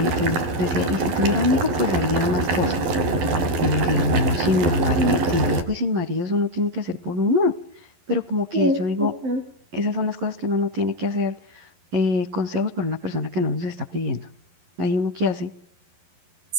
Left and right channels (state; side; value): late; left; 11 ms